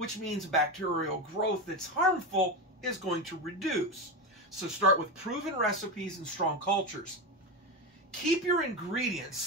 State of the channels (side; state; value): both; normal; correlation 0.17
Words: means bacterial growth that's harmful is going to reduce. So start with proven recipes and strong cultures. Keep your ingredients,